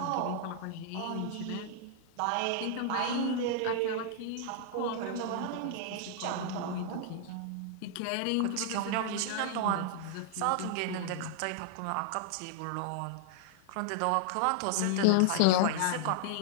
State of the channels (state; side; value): different; both; correlation 0.00